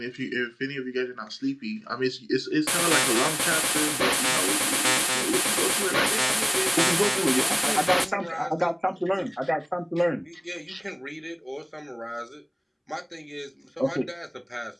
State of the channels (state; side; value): identical; both; correlation 1.00